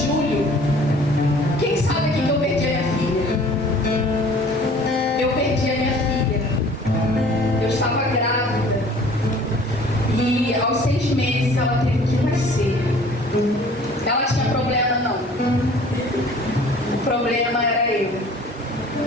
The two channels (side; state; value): both; normal; correlation 0.50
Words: quem sabe aqui que eu perdi a minha filha? Eu perdi a minha filha. Eu estava grávida. E aos 6 meses ela teve que nascer. Ela tinha problema, não. O problema era eu.